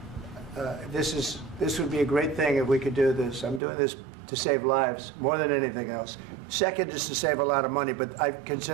This would be a great thing if we could do this. I'm doing this to save lives more than anything else. Second is to save a lot of money, but I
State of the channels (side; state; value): left; drops out; at 3.6 s